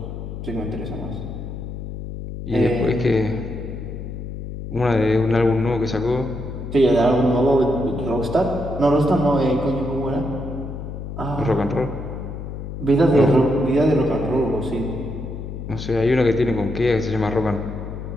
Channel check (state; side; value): noise; left; hum, 8 dB below the sound